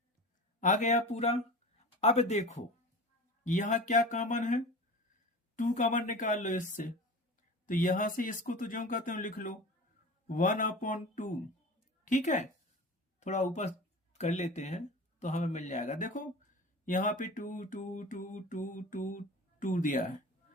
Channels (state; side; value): normal; both; correlation 0.34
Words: आ गया पूरा। अब देखो यहां क्या कॉमन है, 2 कॉमन निकाल लो इससे, तो यहां से इसको तो जो कहते हो लिख लो 1/2। ठीक है, थोड़ा ऊपर कर लेते हैं तो हमें मिल जाएगा। देखो यहाँ पे 2 2 2 2 2 2 दिया है,